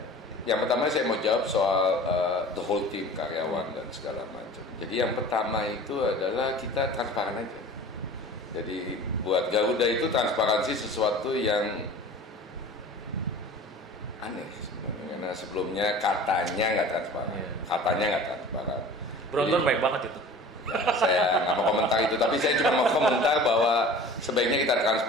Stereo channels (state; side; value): normal; both; correlation 0.41